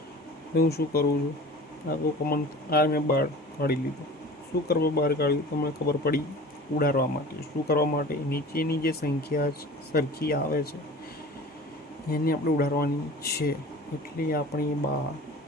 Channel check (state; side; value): normal; both; correlation 0.40